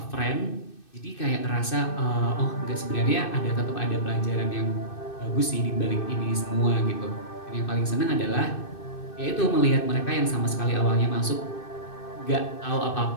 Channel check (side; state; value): right; late; 2.6 ms